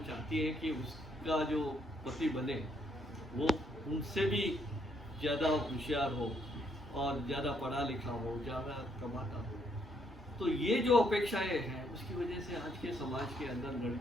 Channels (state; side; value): normal; both; correlation 0.72